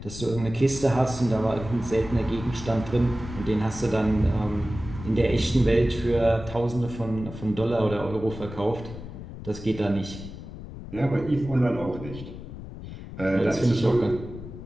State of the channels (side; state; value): left; noise; rumble, 12 dB below the sound